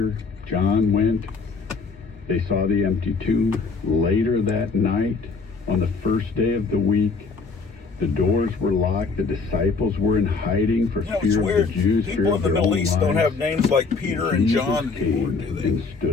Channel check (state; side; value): quieter; right; 4.5 dB